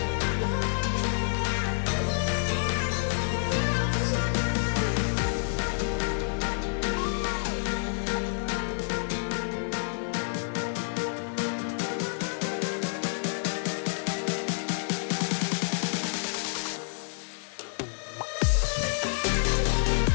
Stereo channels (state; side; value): silent; right; 59 dB below the other